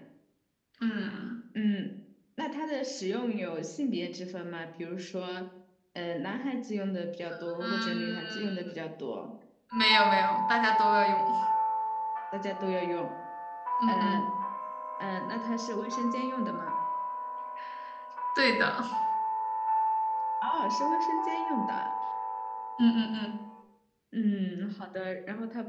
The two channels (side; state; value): both; identical; correlation 1.00